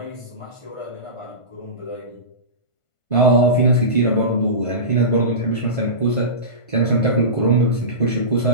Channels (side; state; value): right; late; 1.5 ms